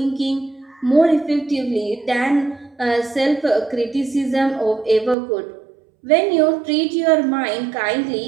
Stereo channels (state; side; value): drops out; left; at 5.2 s